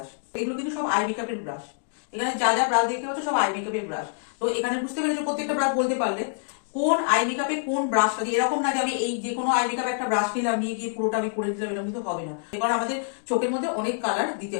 এগুলো কিন্তু সব আই মেকআপের ব্রাশ। এখানে যা যা ব্রাশ দেখতে পাচ্ছ সব আই মেকআপের ব্রাশ। তো এখানে বুঝতে পেরেছো প্রত্যেকটা ব্রাশ বলতে পারলে কোন আই মেকআপে কোন ব্রাশটা দিয়ে। এরকম না যে আমি এই যে কোনো আই মেকআপ একটা ব্রাশ নিলাম, নিয়ে গিয়ে পুরোটা আমি করে দিলাম, এরকম কিন্তু হবে না। কারণ আমাদের চোখের মধ্যে অনেক কালার দিতে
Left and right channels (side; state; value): right; silent; digital silence